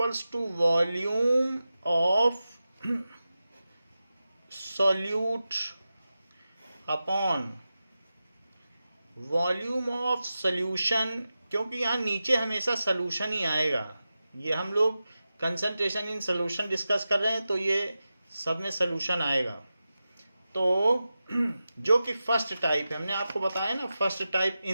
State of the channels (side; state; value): both; inverted; correlation -0.93